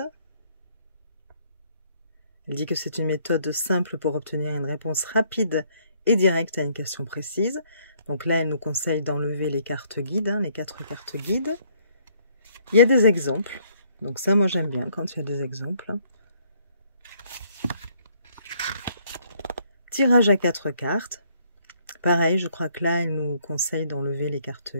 Elle dit que c'est une méthode simple pour obtenir une réponse rapide et directe à une question précise. Donc là, elle nous conseille d'enlever les cartes guides, les 4 cartes guides. Il y a des exemples. Donc ça, moi, j'aime bien quand il y a des exemples. Tirage à 4 cartes. Pareil, je crois que là, il nous conseille d'enlever les cartes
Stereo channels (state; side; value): inverted; both; correlation -0.66